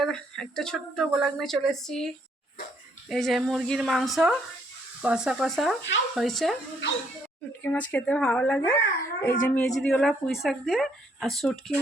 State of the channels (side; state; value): both; normal; correlation 0.69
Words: একটা ছোট্ট ব্লগ নিয়ে চলে এসেছি। এই যে মুরগির মাংস কষা কষা হয়েছে। শুটকি মাছ খেতে ভালো লাগে। এই যে মেজরিওলা পুঁই শাক দিয়ে আর শুটকি